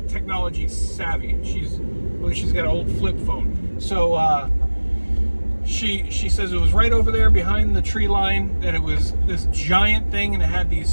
technology savvy. She's got an old flip phone. So she says it was right over there behind the tree line, that it was this giant thing and it had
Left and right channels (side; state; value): both; inverted; correlation -1.00